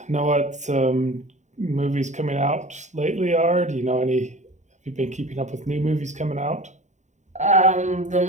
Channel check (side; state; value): left; late; 0.34 ms